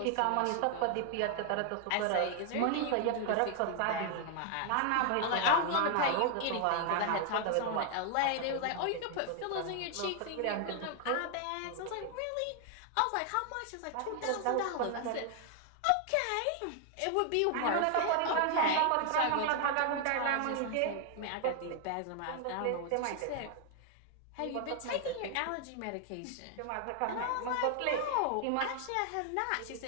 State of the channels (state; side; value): different; both; correlation 0.00